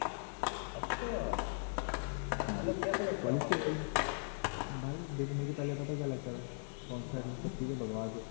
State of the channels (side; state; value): right; silent; digital silence